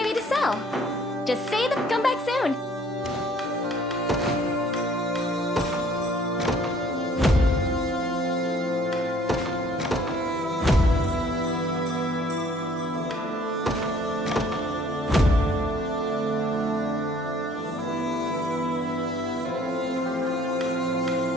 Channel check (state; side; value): normal; both; correlation 0.58